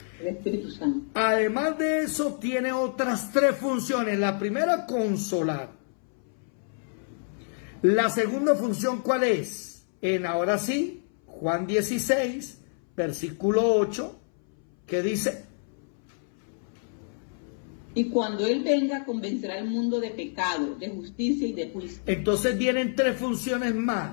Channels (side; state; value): right; silent; 60 dB below the other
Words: El Espíritu Santo. Además de eso, tiene otras tres funciones. La primera, consolar. La segunda función, ¿cuál es? Ahora sí, Juan 16, versículo 8, que dice: Y cuando Él venga, convencerá al mundo de pecado, de justicia y de juicio. Entonces vienen tres funciones